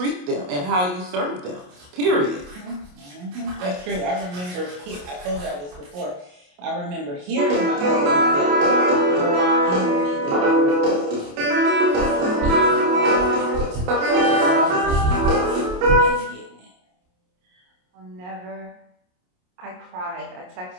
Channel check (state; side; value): late; left; 28 ms